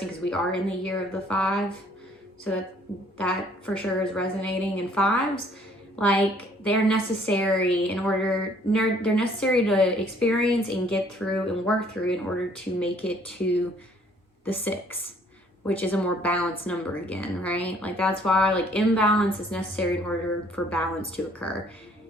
because we are in the year of the 5, so that for sure is resonating. And fives, like, they're necessary they're necessary to experience and get through and work through in order to make it to the 6, which is a more balanced number again, right? Like, that's why, like, imbalance is necessary in order for balance to occur.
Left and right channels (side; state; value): both; normal; correlation 0.60